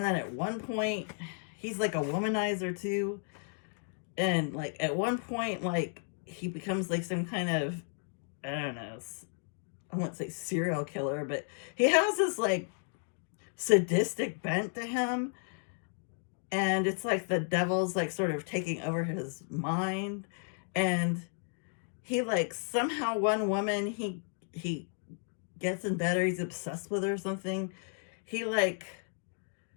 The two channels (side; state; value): right; silent; 55 dB below the other